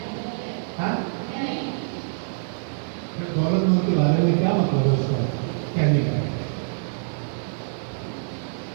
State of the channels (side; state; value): left; silent; digital silence